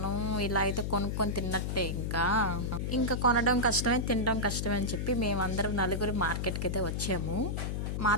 ఇలా అయితే కొనుక్కొని తిన్నట్టే. ఇంకా కొనడం కష్టమే, తినడం కష్టమే అని చెప్పి మేమందరం నలుగురు మార్కెట్కి అయితే వచ్చాము.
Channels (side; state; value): left; noise; hum, 1 dB below the sound